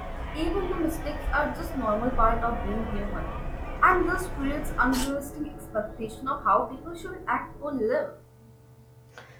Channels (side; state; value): both; identical; correlation 1.00